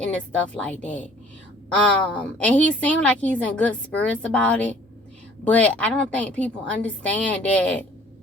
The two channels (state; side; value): normal; both; correlation 0.54